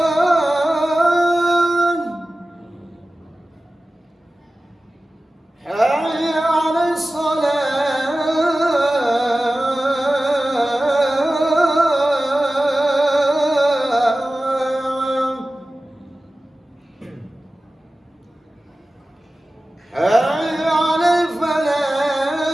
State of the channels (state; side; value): normal; both; correlation 0.96